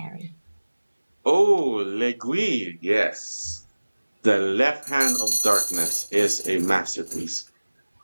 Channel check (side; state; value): both; inverted; correlation -1.00